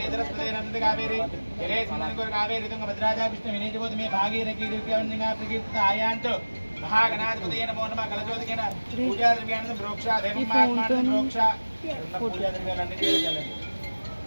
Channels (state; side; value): inverted; both; correlation -1.00